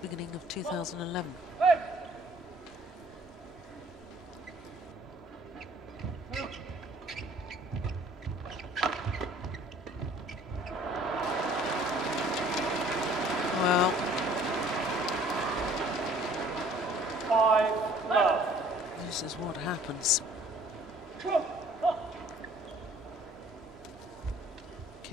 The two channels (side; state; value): both; normal; correlation 0.55